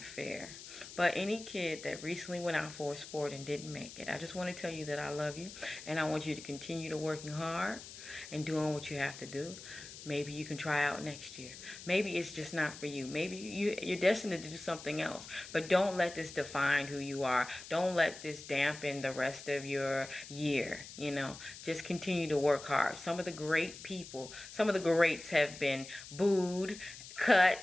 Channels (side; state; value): left; noise; hiss, 14 dB below the sound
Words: fair. But any kid that recently went out for a sport and didn't make it, I just want to tell you that I love you. And I want you to continue to working hard and doing what you have to do. Maybe you can try out next year. Maybe it's just not for you. Maybe you're destined to do something else. But don't let this define who you are. Don't let this dampen the rest of your year. You know, just continue to work hard. Some of the great people, some of the greats have been booed, cut,